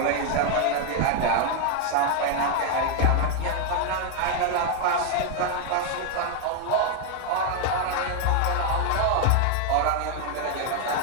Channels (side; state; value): both; different; correlation 0.00